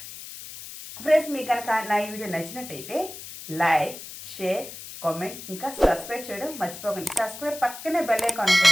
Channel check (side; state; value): left; noise; hiss, 12 dB below the sound